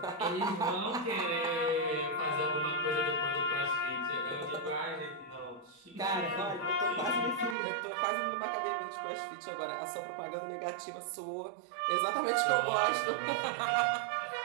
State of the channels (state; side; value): drops out; left; at 7.6 s